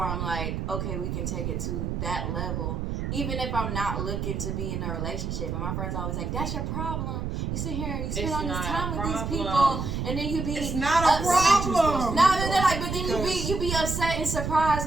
I'm like, okay, we can take it to that level. Even if I'm not looking to be in a relationship. And my friends always like, that's your problem. You sit here and you spend all this time with these people, and then you be It's not a problem. No, they're like, but then you be upset and surprised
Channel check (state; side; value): noise; right; rumble, 3 dB below the sound